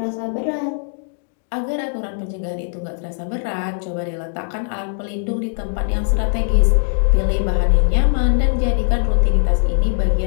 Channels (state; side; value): silent; right; digital silence